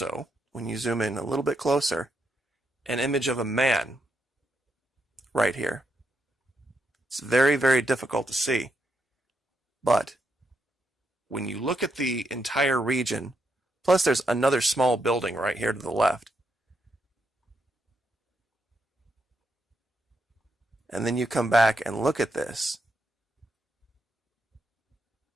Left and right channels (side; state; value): both; normal; correlation 0.80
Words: when you zoom in a little bit closer, an image of a man right here. It's very, very difficult to see, but when you look at the entire region, plus there's another small building right here to the left, and then you come back and look at this,